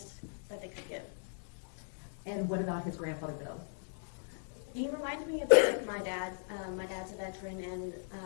that they could give. And what about his grandfather, Bill? He reminded me a bit of my dad. My dad's a veteran,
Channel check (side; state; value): right; silent; digital silence